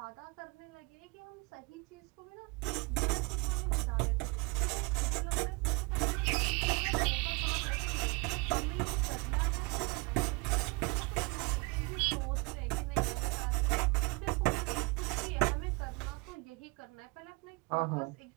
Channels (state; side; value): quieter; left; 27.6 dB